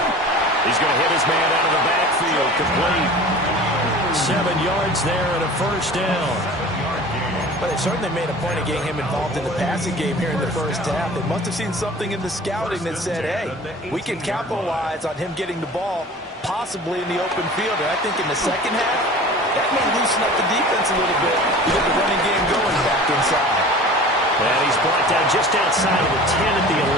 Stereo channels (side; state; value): both; normal; correlation 0.41